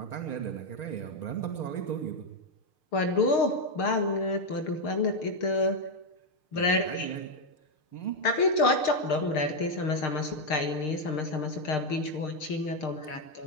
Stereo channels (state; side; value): late; right; 6.5 ms